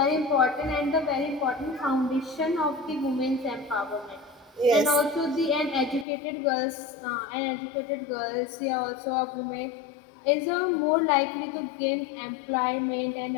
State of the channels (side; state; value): right; drops out; at 6.1 s